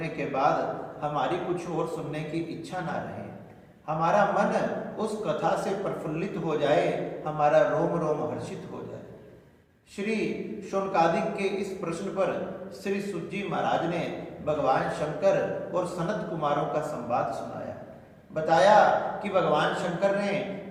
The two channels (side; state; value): both; identical; correlation 1.00